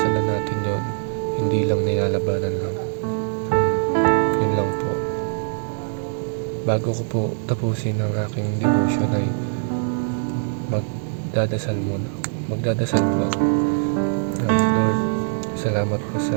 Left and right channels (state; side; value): silent; left; digital silence